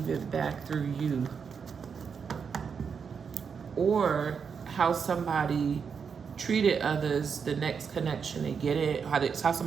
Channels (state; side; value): quieter; left; 6.3 dB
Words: it back through you. or how somebody treated others, the next connection they get it, how